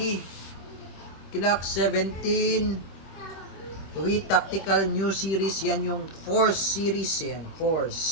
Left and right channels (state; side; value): late; right; 26 ms